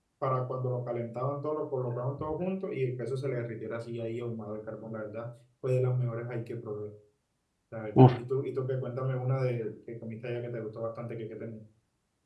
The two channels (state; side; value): identical; both; correlation 1.00